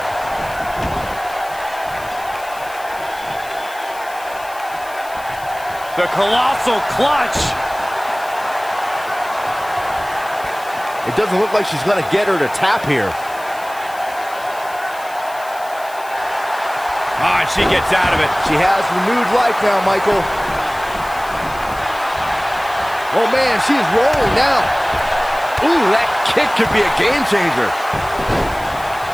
The colossal clutch. It doesn't look like she's gonna get her to tap here. Ah, she gets out of it. She has renewed life now, Michael. Oh man, she's rolling now. Ooh, that kick could be a game changer.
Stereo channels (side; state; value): left; noise; hiss, 19 dB below the sound